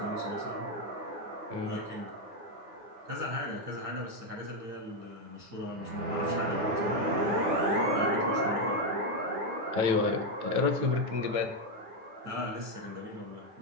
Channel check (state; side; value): late; left; 9.1 ms